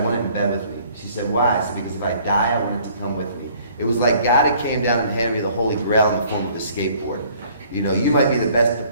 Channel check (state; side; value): inverted; both; correlation -0.57